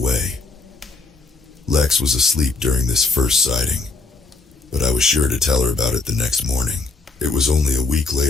Lex was asleep during this first sighting, but I was sure to tell her about it the next morning. It was only a week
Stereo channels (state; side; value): quieter; right; 3.8 dB